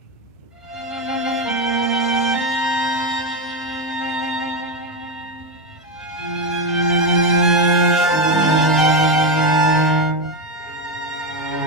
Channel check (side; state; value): both; normal; correlation 0.10